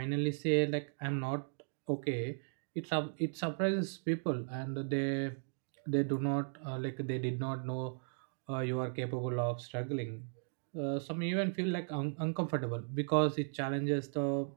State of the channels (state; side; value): silent; left; digital silence